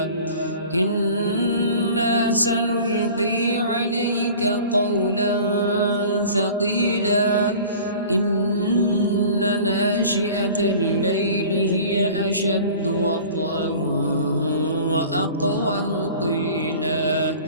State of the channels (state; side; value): inverted; both; correlation -0.43